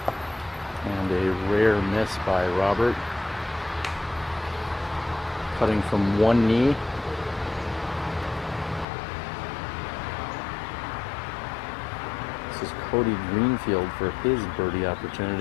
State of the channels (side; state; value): right; drops out; at 8.8 s